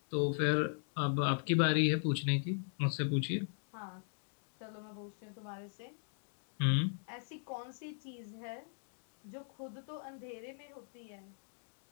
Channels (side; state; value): right; silent; digital silence